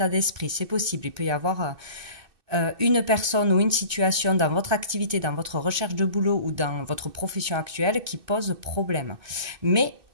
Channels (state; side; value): late; left; 2.6 ms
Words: d'esprit. C'est possible. Il peut y avoir une personne ou une situation dans votre activité, dans votre recherche de boulot ou dans votre profession actuelle qui pose problème. Mais